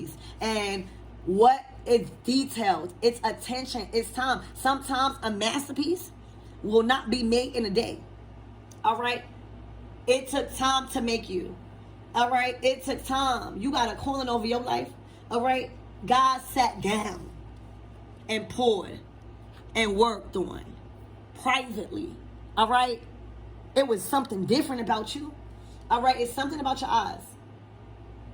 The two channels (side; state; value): both; identical; correlation 1.00